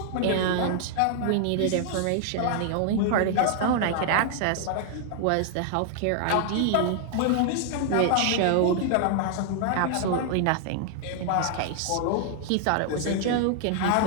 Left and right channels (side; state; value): both; different; correlation 0.00